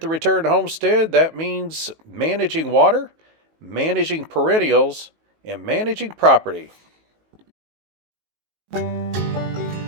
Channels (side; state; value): left; late; 19 ms